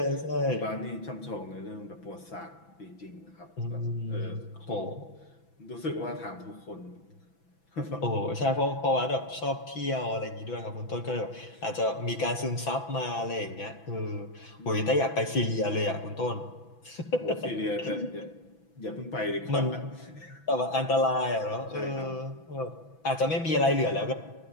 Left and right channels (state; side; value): late; right; 6.0 ms